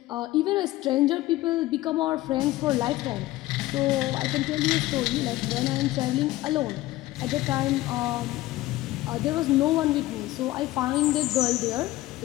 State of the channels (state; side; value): quieter; right; 17.1 dB